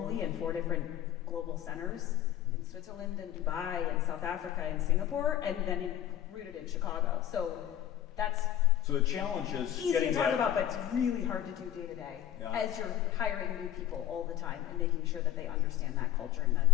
in 4 different global centers, in Switzerland and Dubai and South Africa and Singapore, and then rooted in Chicago. So that's the challenge is easy getting to talk that, about, but it's really hard to do day to day Yeah. as you're hiring new people all the time and making sure that they understand that culture and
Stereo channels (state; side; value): quieter; right; 11.4 dB